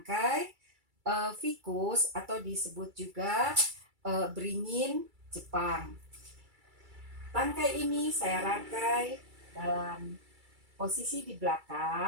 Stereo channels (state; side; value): late; left; 2.3 ms